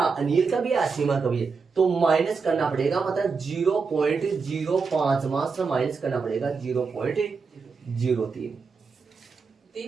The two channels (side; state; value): left; quieter; 5.0 dB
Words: का भी है, आसीमा का भी है, तो माइनस करना पड़ेगा। मतलब 0.05 मात्र माइनस करना पड़ेगा। 0.03